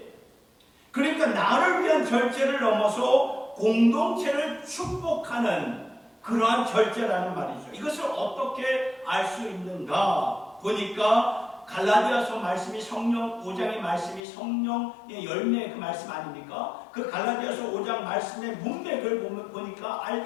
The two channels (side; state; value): right; drops out; at 14.2 s